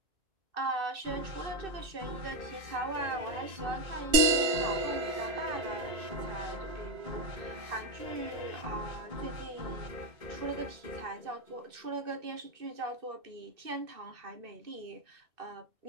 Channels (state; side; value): late; left; 2.6 ms